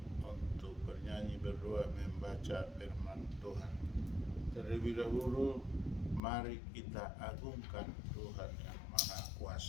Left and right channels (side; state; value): right; drops out; at 6.2 s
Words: untuk bernyanyi berdua membaca firman Tuhan. Terlebih dahulu mari kita agungkan Tuhan yang Maha